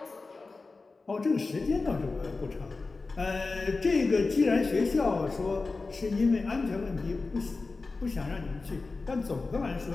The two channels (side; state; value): right; quieter; 3.8 dB